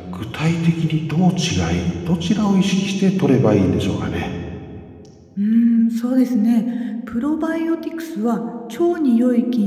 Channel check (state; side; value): identical; both; correlation 1.00